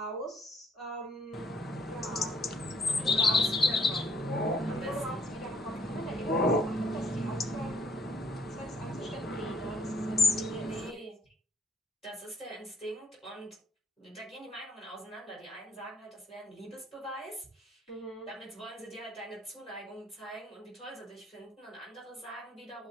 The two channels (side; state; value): both; normal; correlation 0.64